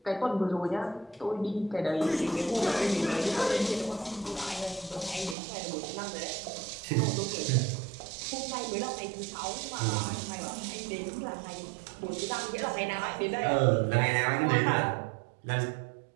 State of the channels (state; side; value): drops out; left; at 5.4 s